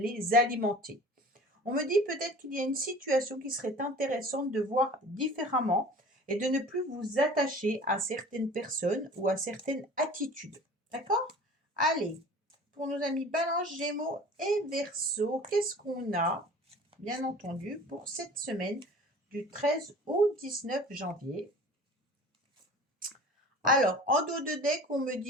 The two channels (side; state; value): both; normal; correlation 0.43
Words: alimenter. On me dit peut-être qu'il y a une situation qui serait intéressante de voir différemment et de ne plus vous attacher à certaines personnes ou à certaines attitudes. D'accord? Allez, pour nos amis Balance, Gémeaux et Verseau, qu'est-ce qu'on a, bien entendu, pour cette semaine du 13 au 19 janvier? Alors, en dos de deck, on me